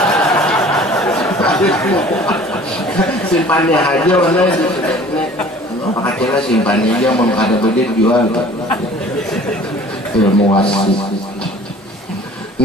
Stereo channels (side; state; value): both; normal; correlation 0.48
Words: simpannya aja warna pakailah simpannya aja mau ada bedit jual ilmu wasi.